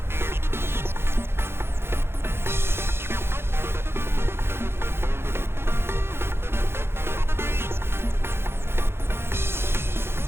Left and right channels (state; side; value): late; left; 0.12 ms